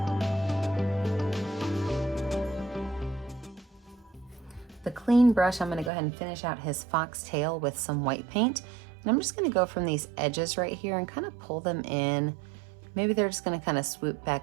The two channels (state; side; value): drops out; left; at 5.9 s